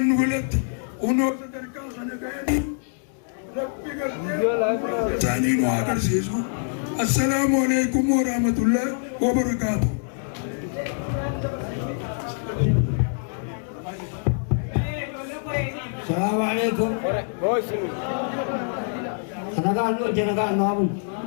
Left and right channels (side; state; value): right; silent; 59 dB below the other